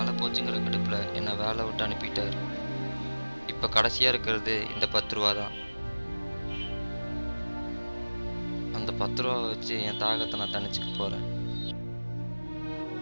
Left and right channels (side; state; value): both; inverted; correlation -1.00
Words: போச்சுங்கிற கடுப்பில் என்னை வேலை விட்டு அனுப்பிட்டார். இப்போ கடைசியாக இருக்கிறது இந்த 10 ரூபா தான். அந்த 10 ரூபா வச்சு என் தாகத்தை நான் தணிச்சுக்க போகிறேன்.